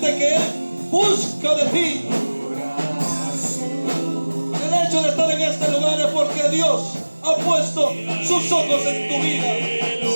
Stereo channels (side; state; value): both; inverted; correlation -1.00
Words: que Él busca de ti. El hecho de estar en este lugar es porque Dios ha puesto sus ojos en tu vida.